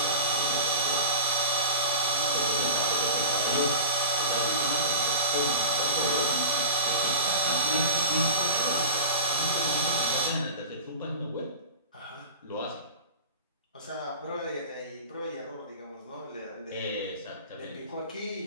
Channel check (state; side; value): inverted; both; correlation -0.31